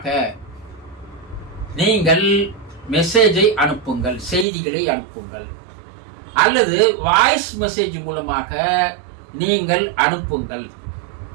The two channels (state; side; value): drops out; left; at 4.5 s